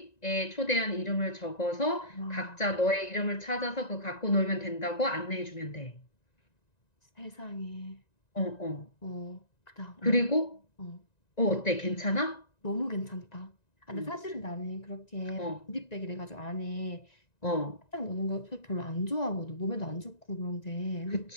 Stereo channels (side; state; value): right; late; 1.9 ms